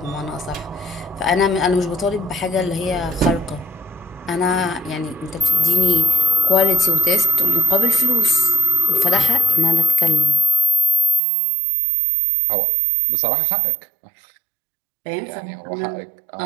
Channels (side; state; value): left; drops out; at 11.2 s